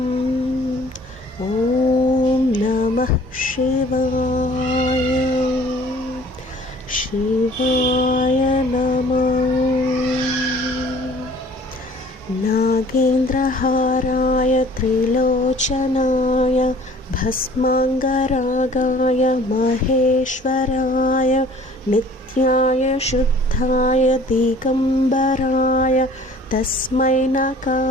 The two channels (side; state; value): both; normal; correlation 0.51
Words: ఓం నమః శివాయ, శివాయ నమో. నాగేంద్రహారాయ త్రిలోచనాయ భస్మాంగరాగాయ మహేశ్వరాయ నిత్యాయ శుద్ధాయ దిగంబరాయ తస్మై